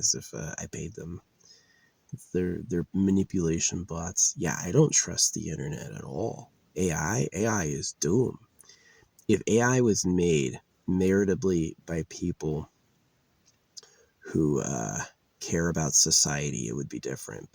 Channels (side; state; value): both; identical; correlation 1.00